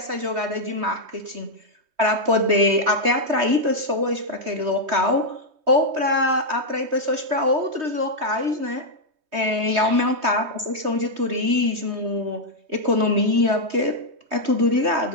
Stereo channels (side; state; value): left; late; 3.2 ms